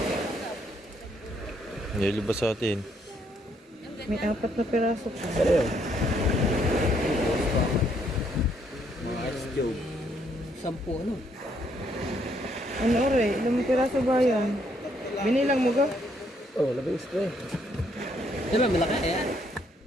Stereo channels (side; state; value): both; normal; correlation 0.71